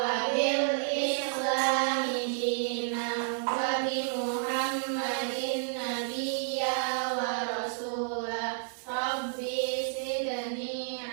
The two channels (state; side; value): silent; left; 57 dB below the other